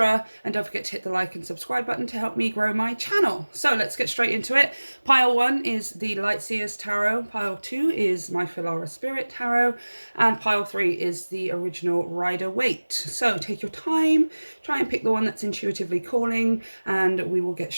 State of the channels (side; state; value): both; inverted; correlation -1.00